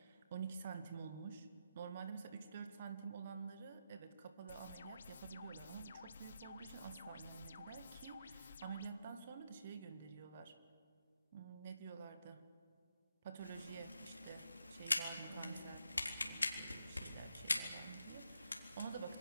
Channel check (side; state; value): both; inverted; correlation -0.83